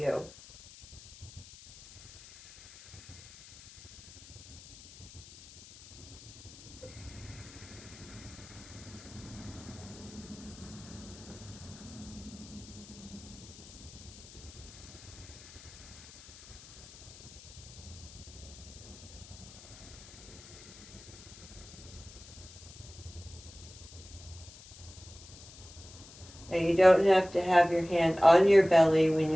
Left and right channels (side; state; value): left; noise; hiss, 18 dB below the sound